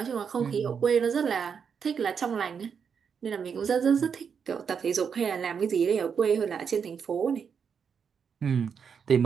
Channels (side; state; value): left; quieter; 6.7 dB